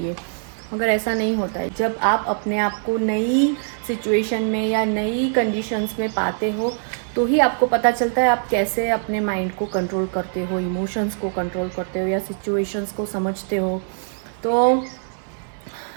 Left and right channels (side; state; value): left; silent; 57 dB below the other